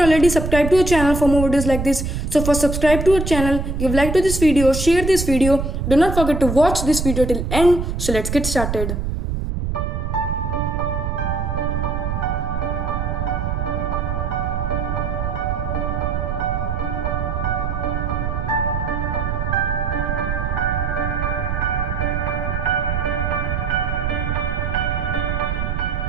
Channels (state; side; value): noise; right; rumble, 2 dB below the sound